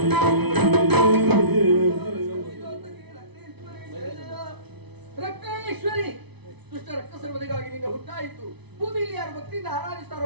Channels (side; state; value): left; late; 0.99 ms